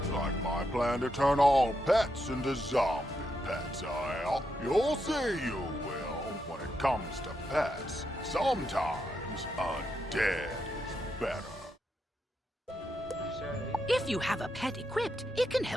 Like my plan to turn all pets into zombie pets, you'll see you will. When it comes to pets, sometimes undead is better. If you have a pet equipped, it can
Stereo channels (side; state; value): both; normal; correlation 0.82